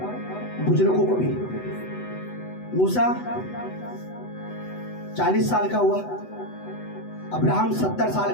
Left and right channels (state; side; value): late; right; 8.0 ms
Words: बुजुर्गों को भी। मूसा 40 साल का हुआ, अब्राहम 70